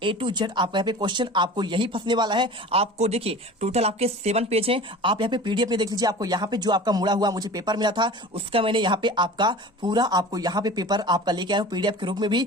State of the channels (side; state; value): both; normal; correlation 0.38